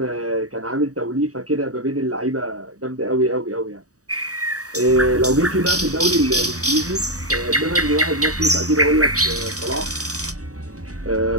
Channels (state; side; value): late; left; 0.66 ms